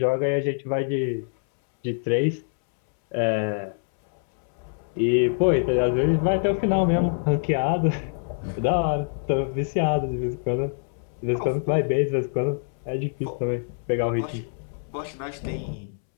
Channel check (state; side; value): silent; right; 62 dB below the other